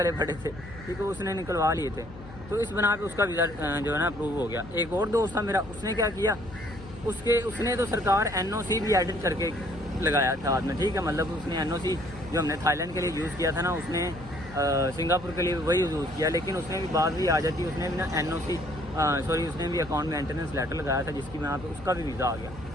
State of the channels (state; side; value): noise; left; hum, 17 dB below the sound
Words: پڑے تھے, ٹھیک ہے, اس نے نکلوا لیے تھے. تو اس بنا پہ اس کا ویزا جو ہے نا اپروو ہو گیا. ایک اور دوست تھا میرا, اس نے کیا کیا, اس نے تو سرکار NOC بھی ایڈٹ کر کے لگایا تھا ہاتھ میں, ٹھیک ہے, مطلب اس نے NOC جو ہم نے تھائی لینڈ کے لیے یوز کیا تھا نا, اس نے سنگاپور کے لیے وہی یوز کیا, لیکن اس نے بھی بات بھی آ جاتی, اس نے بھی نا NOC اس نے بھی اکاؤنٹ مینٹیننس لیٹر لگایا تھا, جس کی بنا پہ اس کا بھی ویزا آ گیا,